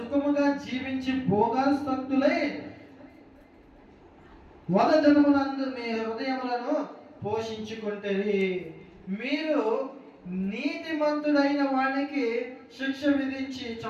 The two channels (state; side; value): identical; both; correlation 1.00